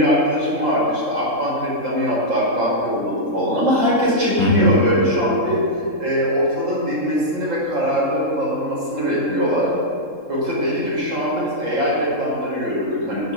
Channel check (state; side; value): late; left; 3.7 ms